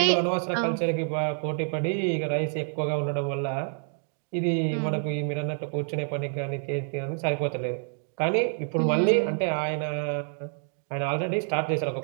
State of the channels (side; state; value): left; silent; 58 dB below the other